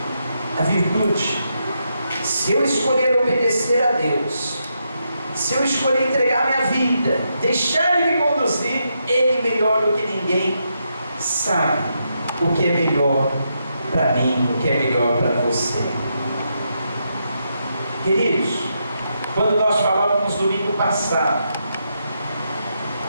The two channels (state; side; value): inverted; both; correlation -0.82